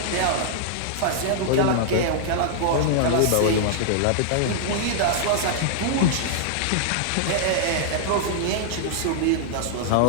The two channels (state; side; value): different; both; correlation -0.01